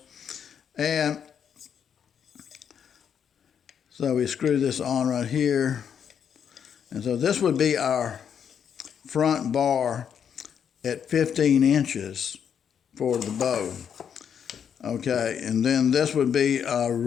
And so we screw this on right here. And so this would be our front bar at 15 inches for the bow. Okay, and then this would be our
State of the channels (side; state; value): right; quieter; 8.0 dB